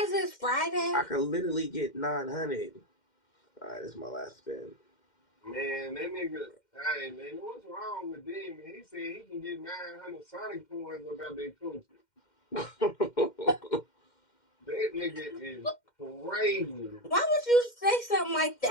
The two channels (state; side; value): late; right; 2.1 ms